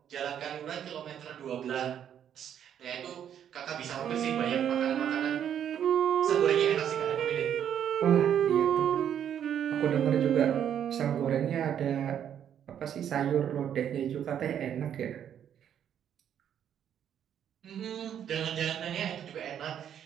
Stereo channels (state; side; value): quieter; left; 9.4 dB